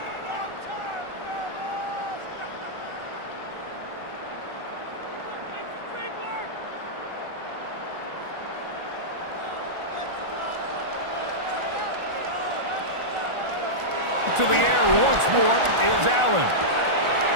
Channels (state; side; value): late; left; 1.4 ms